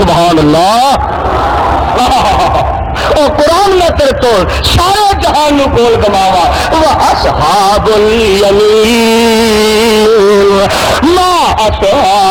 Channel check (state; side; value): identical; both; correlation 1.00